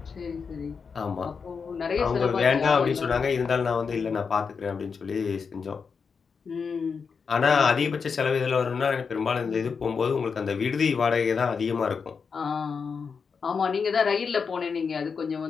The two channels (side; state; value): right; quieter; 5.6 dB